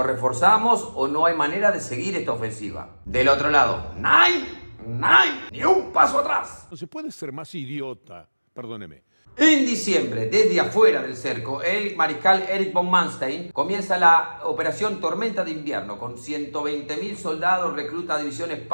reforzamos o no hay manera de seguir esta ofensiva. Del otro lado, ¡Nein! ¡Ni un paso atrás! No se puede ser más idiota. Perdóneme. En diciembre, desde afuera del cerco, el mariscal Erich von Manstein comienza la operación Tormenta de Invierno con 120.000 soldados, recluta divisiones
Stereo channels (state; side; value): inverted; both; correlation -1.00